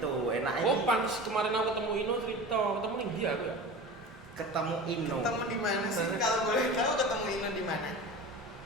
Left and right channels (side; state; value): both; normal; correlation 0.33